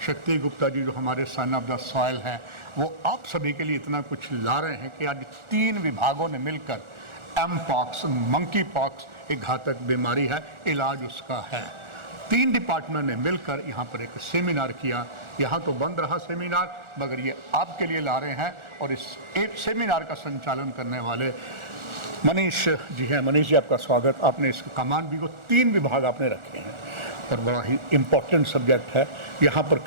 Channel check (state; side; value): late; left; 1.4 ms